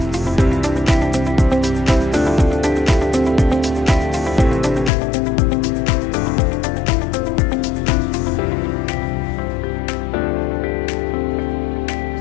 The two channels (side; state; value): right; drops out; at 4.9 s